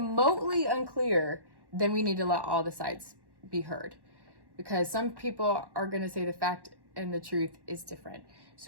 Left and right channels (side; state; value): left; late; 1.1 ms